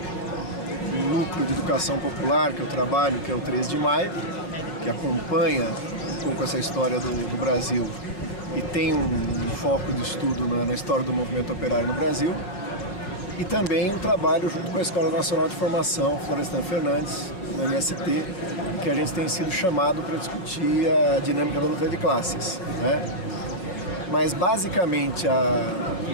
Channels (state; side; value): late; right; 5.4 ms